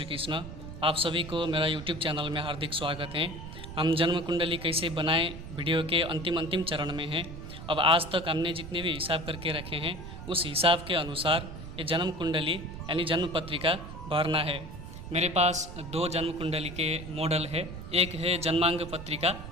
कृष्ण। आप सभी को मेरा YouTube चैनल में हार्दिक स्वागत है। हम जन्म कुंडली कैसे बनाएं वीडियो के अंतिम चरण में हैं। अब आज तक हमने जितने भी हिसाब करके रखे हैं उस हिसाब के अनुसार ये जन्म कुंडली यानी जन्म पत्रिका भरना है। मेरे पास दो जन्म कुंडली के मॉडल है, एक है जन्मांग पत्रिका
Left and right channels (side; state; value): right; noise; rumble, 11 dB below the sound